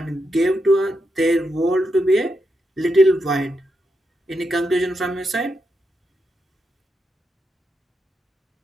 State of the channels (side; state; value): both; normal; correlation 0.84